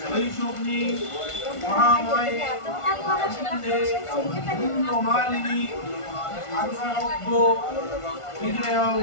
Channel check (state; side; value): late; right; 1.5 ms